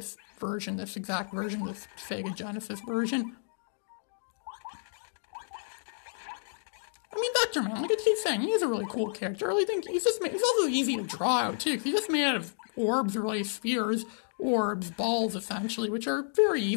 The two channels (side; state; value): right; silent; digital silence